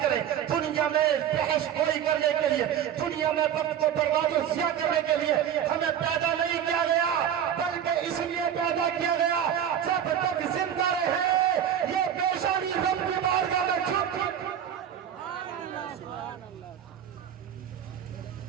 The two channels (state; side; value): quieter; left; 9.4 dB